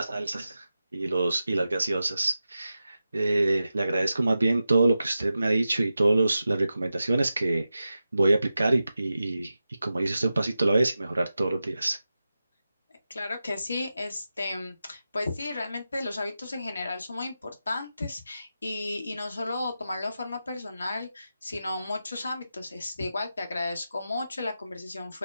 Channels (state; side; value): inverted; both; correlation -0.91